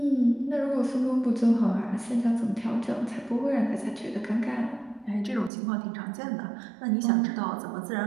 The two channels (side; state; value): left; drops out; at 5.5 s